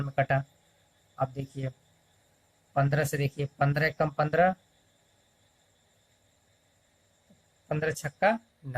में कटा। अब देखिए 15 से, देखिए 15 कम 15, 15 छक्का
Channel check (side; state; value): both; identical; correlation 1.00